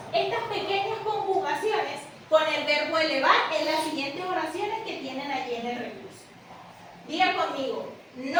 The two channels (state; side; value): identical; both; correlation 1.00